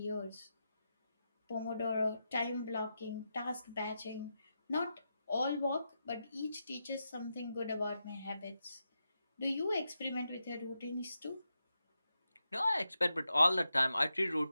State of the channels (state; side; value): inverted; both; correlation -0.87